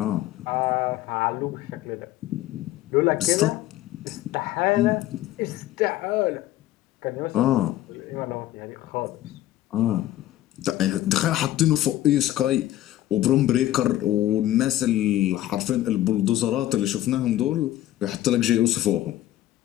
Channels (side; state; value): right; quieter; 14.2 dB